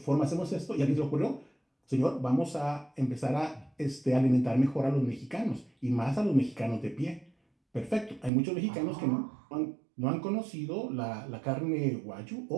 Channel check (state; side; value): drops out; left; at 8.3 s